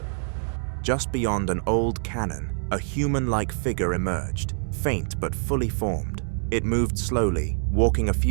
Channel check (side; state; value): left; silent; digital silence